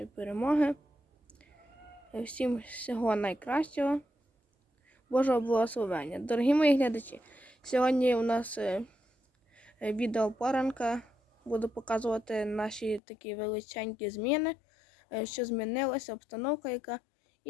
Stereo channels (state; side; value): drops out; right; at 13.0 s